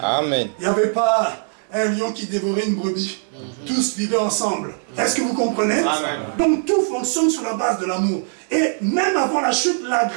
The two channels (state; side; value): silent; left; 65 dB below the other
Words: Amen. Il n'y avait pas un lion qui dévorait une brebis. Tous vivaient ensemble. Est-ce que vous comprenez? Amen. Donc tout fonctionne sur la base de l'amour. Et même avant la chute, la